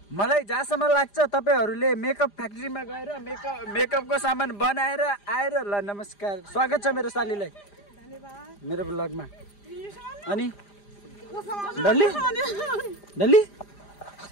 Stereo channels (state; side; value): late; right; 5.0 ms